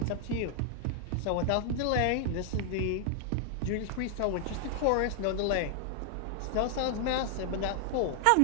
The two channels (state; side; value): different; both; correlation 0.00